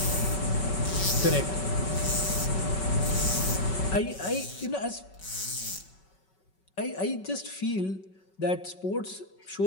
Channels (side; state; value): right; late; 5.3 ms